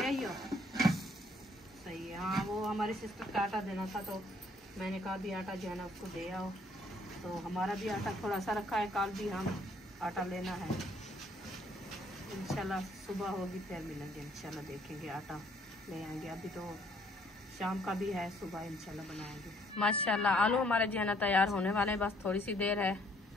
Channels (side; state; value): both; normal; correlation 0.63